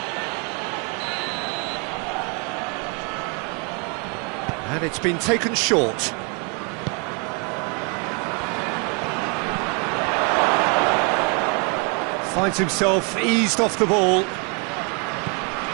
And it's been taken short. Finds himself eased off the ball.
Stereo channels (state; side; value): quieter; left; 34.1 dB